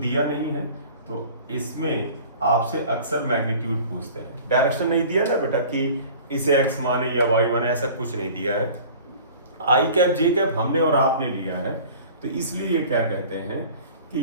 नहीं है, तो इसमें आपसे अक्सर मैग्नीट्यूड पूछते हैं। डायरेक्शन नहीं दिया ना बेटा कि इसे x माने या y माने, ऐसा कुछ नहीं दिया है। i कैप j कैप हमने और आपने लिया है, तो इसलिए ये क्या कहते हैं कि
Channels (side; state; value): both; inverted; correlation -0.44